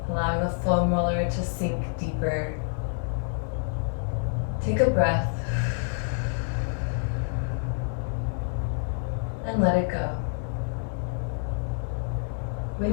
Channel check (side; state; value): right; silent; 60 dB below the other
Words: allowing the foam roller to sink deeper. Take a breath and let it go.